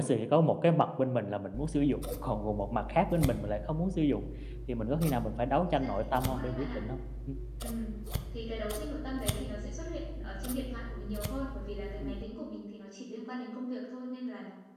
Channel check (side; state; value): both; identical; correlation 1.00